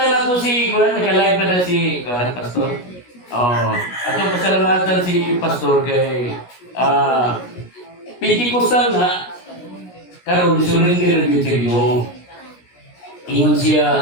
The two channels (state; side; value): late; right; 17 ms